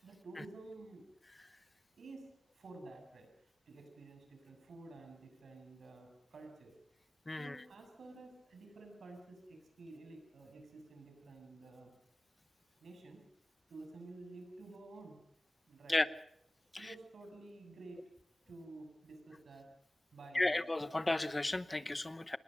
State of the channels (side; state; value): both; normal; correlation 0.98